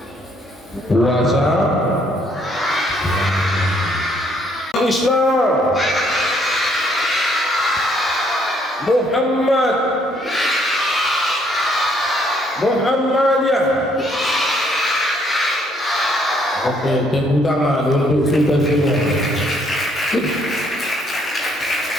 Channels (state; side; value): normal; both; correlation 0.67